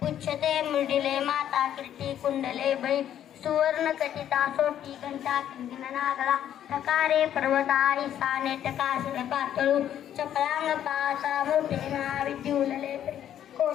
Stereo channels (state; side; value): quieter; right; 10.6 dB